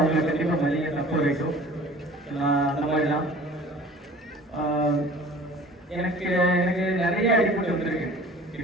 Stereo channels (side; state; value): both; normal; correlation 0.46